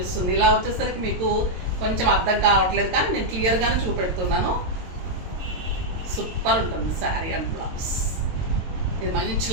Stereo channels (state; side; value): late; left; 22 ms